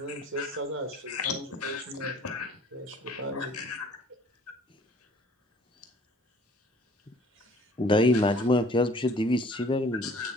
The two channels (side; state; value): both; normal; correlation 0.53